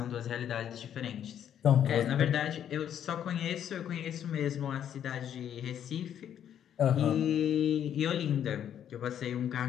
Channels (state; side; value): quieter; right; 9.7 dB